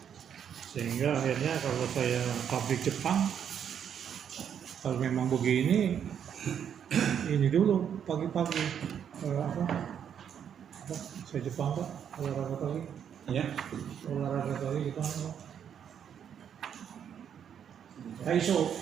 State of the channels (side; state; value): left; quieter; 8.5 dB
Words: sehingga akhirnya kalau saya pabrik Jepang, kalau memang begini ini dulu pagi-pagi Apa? Saya Jepang Pak, olahraga pagi. Ya. Olahraga pagi Jepang Pak. Taiso.